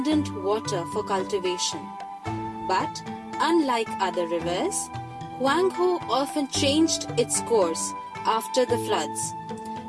water for cultivation. But unlike other rivers, Huanghe often changed its course after the floods.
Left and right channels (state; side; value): identical; both; correlation 1.00